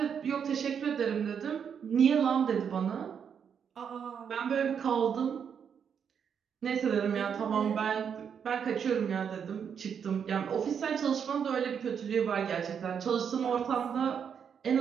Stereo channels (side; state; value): left; quieter; 7.4 dB